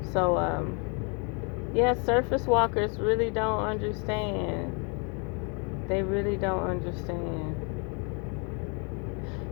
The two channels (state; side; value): quieter; right; 35.1 dB